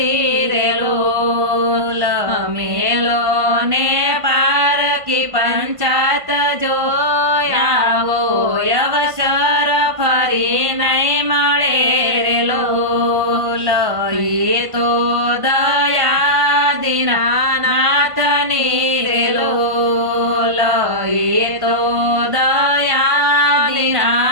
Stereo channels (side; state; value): left; late; 1.5 ms